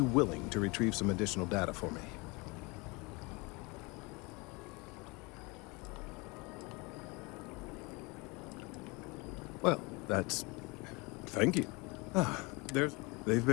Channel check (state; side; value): quieter; right; 26.9 dB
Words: willing to retrieve some additional data for me? Well, that's... Thank you. They've